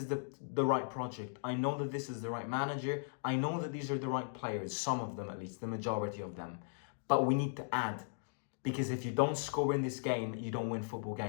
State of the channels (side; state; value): right; silent; digital silence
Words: the right project. I know that this is the right manager. I know that these are the right players. Some of them, at least, the majority of them. But we need to add. Because if you don't score in this game, you don't win football